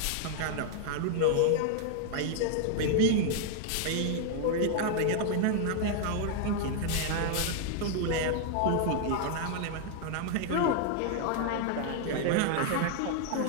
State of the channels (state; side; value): different; both; correlation 0.00